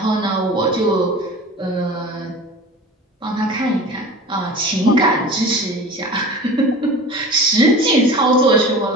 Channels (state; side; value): normal; both; correlation 0.37